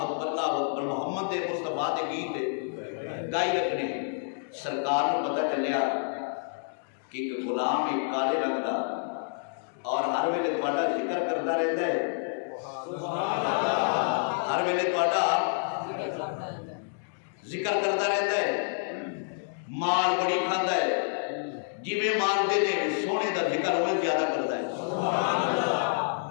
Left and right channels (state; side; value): silent; right; digital silence